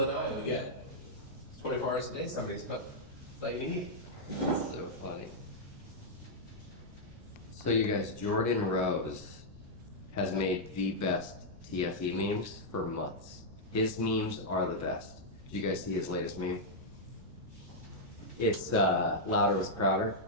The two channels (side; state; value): left; noise; rumble, 21 dB below the sound